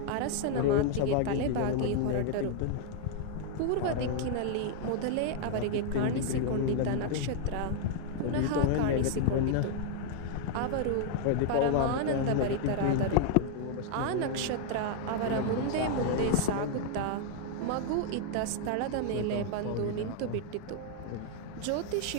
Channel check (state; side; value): different; both; correlation 0.00